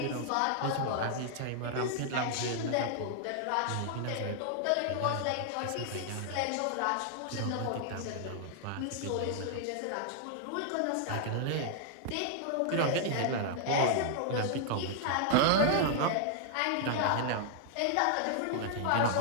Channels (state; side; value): different; both; correlation -0.01